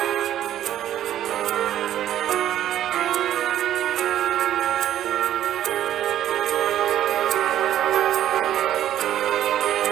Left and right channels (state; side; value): quieter; left; 11.7 dB